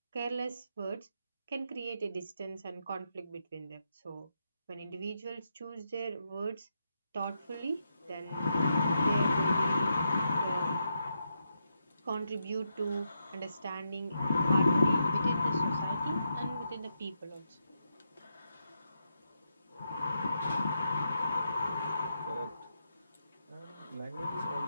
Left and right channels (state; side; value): inverted; both; correlation -0.83